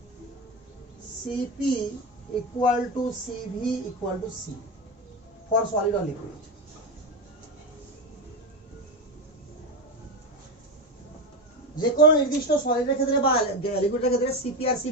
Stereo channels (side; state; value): both; normal; correlation 0.16